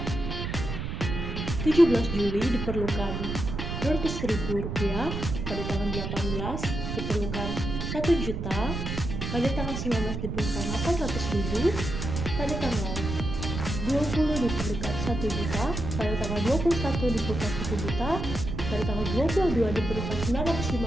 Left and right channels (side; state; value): right; noise; rumble, 4 dB below the sound